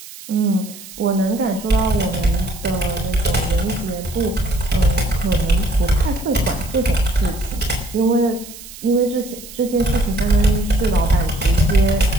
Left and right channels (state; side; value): noise; right; hiss, 16 dB below the sound